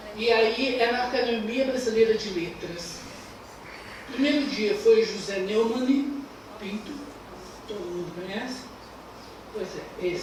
E aí é na Academia Brasileira de Letras. O primeiro dia foi José Neumann Pinto, todo mundo conhece? Pois é,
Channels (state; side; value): identical; both; correlation 1.00